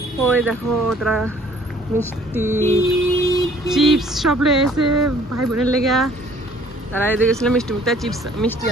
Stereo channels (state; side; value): normal; both; correlation 0.57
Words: ওই দেখো তারা মিষ্টি চিপস সব লেগেছে ভাই বোনের লেগে। তারা এদিকে গেছিল মিষ্টি মুক্তা চিপস মিষ্টি